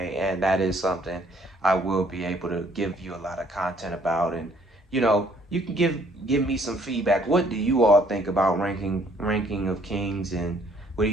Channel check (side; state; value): both; normal; correlation 0.62